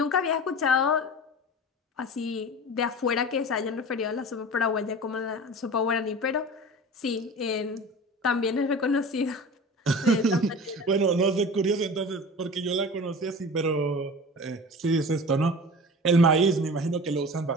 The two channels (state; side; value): normal; both; correlation 0.36